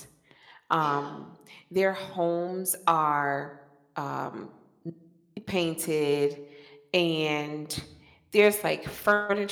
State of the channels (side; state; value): both; identical; correlation 1.00